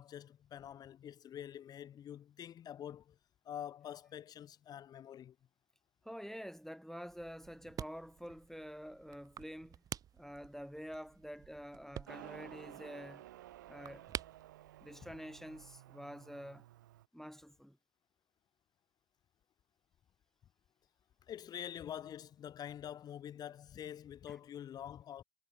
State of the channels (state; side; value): normal; both; correlation 0.52